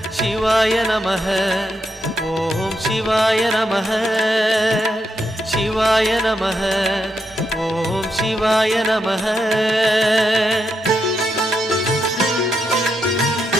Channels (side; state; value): both; normal; correlation 0.82